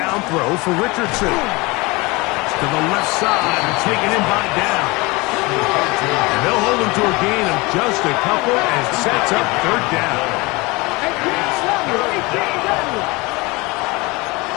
throw for Richardson. To the left side and taken in by down. And they'll hold him to a gain of just a couple and sets up third down.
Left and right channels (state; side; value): quieter; right; 24.3 dB